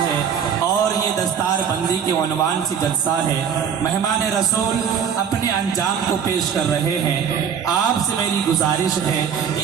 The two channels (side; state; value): left; quieter; 7.6 dB